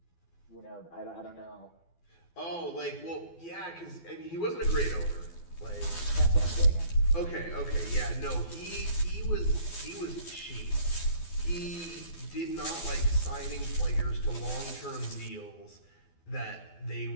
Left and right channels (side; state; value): right; late; 12 ms